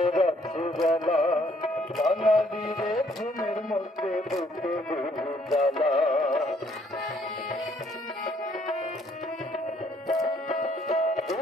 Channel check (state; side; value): normal; both; correlation 0.65